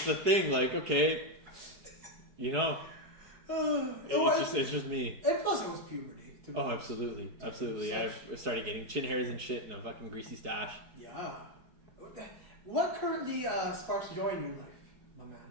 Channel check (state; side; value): late; left; 4.7 ms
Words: a thing. Like, okay, you know, it's just me. And plus, it was puberty. Oh, absolutely. I started getting chin hairs and shit and a fucking greasy stash. Yeah. What currently sparks joy in your life, my man?